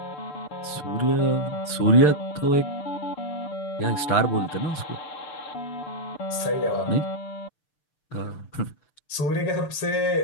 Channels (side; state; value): right; late; 6.7 ms